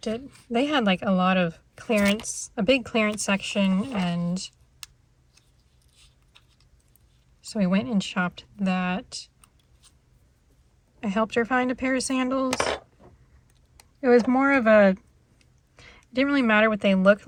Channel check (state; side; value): identical; both; correlation 1.00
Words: at, they had like a lot of clearance, a big clearance section, and so we went and shopped that. I helped her find a pair of sandals. It was more of a, it didn't really matter what they looked